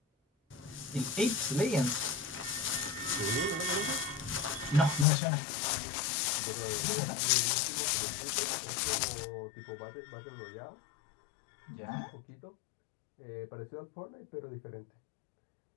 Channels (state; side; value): drops out; right; at 5.1 s